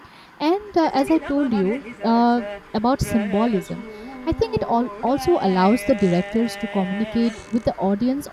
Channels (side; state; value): both; identical; correlation 1.00